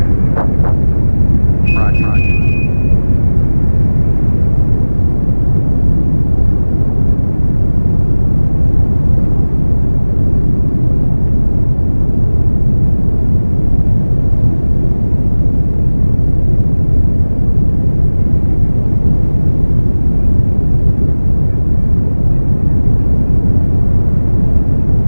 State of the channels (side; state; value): both; inverted; correlation -1.00